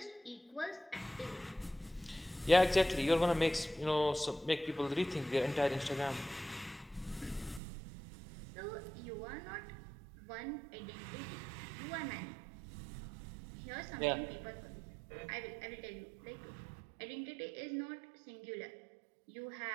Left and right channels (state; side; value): drops out; left; at 7.6 s